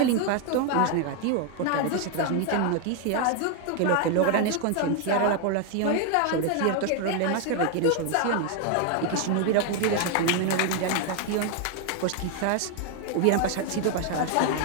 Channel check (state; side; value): different; both; correlation 0.01